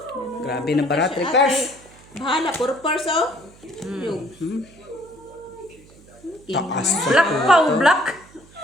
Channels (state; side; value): noise; right; hum, 25 dB below the sound